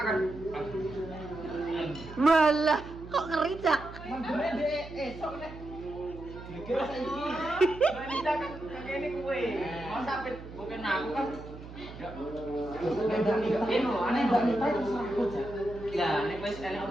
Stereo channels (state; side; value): noise; right; hum, 14 dB below the sound